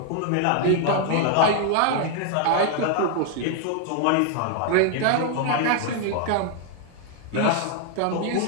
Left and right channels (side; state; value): both; different; correlation 0.00